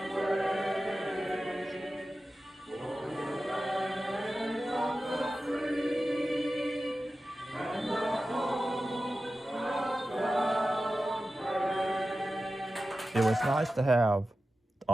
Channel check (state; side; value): normal; both; correlation 0.94